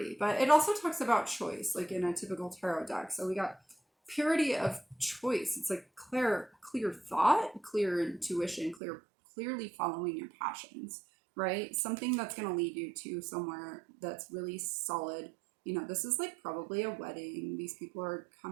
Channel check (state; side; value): drops out; left; at 8.8 s